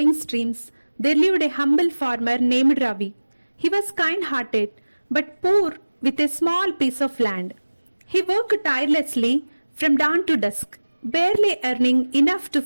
streams, there lived a humble farmer named Ravi. He was kind-hearted, but poor with a small piece of land. He worked tirelessly from dawn to dusk, barely earning enough to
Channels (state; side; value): inverted; both; correlation -1.00